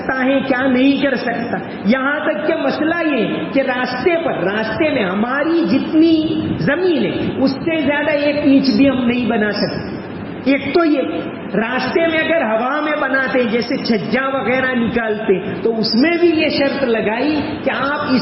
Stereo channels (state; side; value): identical; both; correlation 1.00